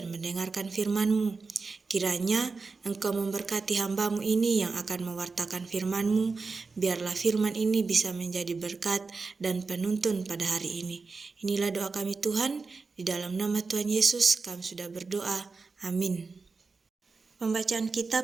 mendengarkan firman-Mu. Kiranya Engkau memberkati hamba-Mu ini yang akan mewartakan firman-Mu, biarlah firman ini bisa menjadi berkat dan penuntun pada hari ini. Inilah doa kami Tuhan, di dalam nama Tuhan Yesus kami sudah berdoa. Amin. Pembacaan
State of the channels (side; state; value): left; quieter; 4.3 dB